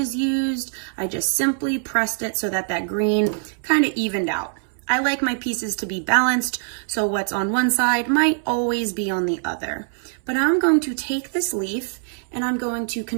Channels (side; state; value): left; silent; 63 dB below the other